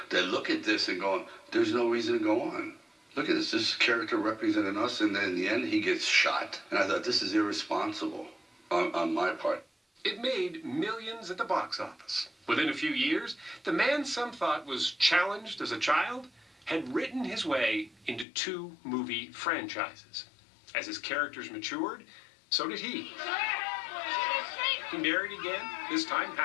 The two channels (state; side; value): drops out; right; at 18.2 s